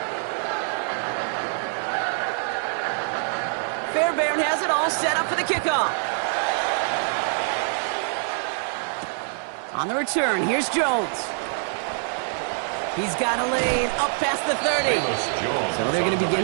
Fairbairn has it all set up for the kickoff. On the return, here's Jones. He's got a lane up past the 30. So they're going to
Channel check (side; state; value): left; silent; 58 dB below the other